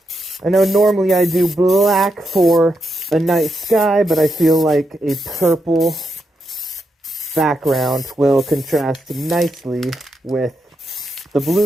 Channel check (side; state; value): both; normal; correlation 0.83